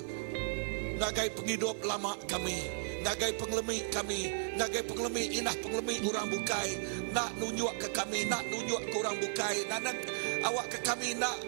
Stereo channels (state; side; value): silent; left; 55 dB below the other